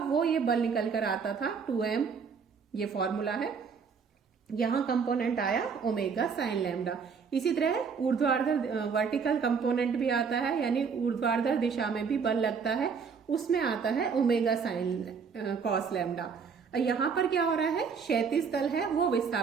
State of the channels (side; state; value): left; quieter; 5.9 dB